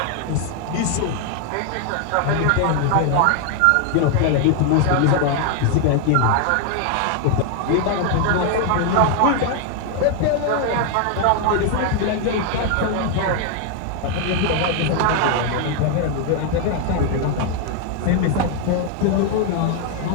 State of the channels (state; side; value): different; both; correlation 0.01